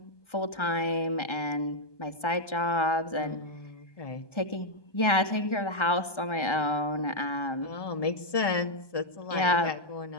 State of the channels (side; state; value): right; late; 1.3 ms